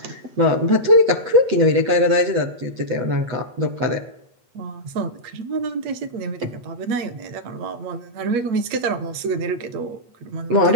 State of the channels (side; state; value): left; late; 8.3 ms